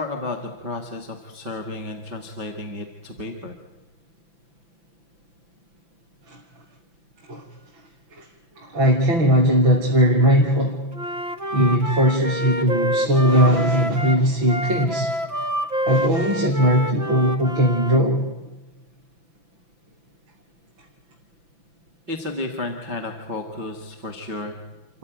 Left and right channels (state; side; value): late; left; 5.9 ms